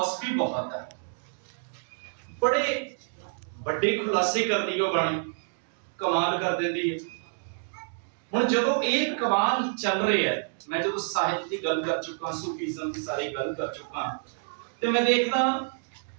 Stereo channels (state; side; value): silent; left; digital silence